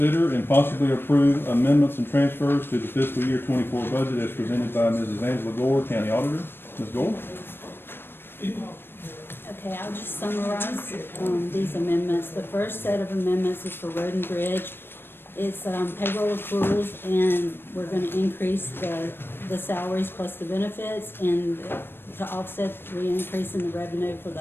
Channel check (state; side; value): late; right; 0.10 ms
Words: and possibly approve amendments and transfers to the fiscal year 24 budget as presented by Mrs. Angela Gore, County Auditor. Ms. Gore? Okay, I'll just summarize these amendments. The first set of amendments is for Road and Bridge. It's payroll accruals, and we're going to increase the salaries plus the benefits, and to offset the increase in the revenue for